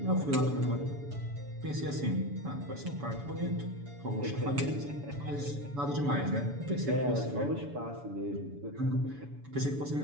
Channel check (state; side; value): late; left; 7.0 ms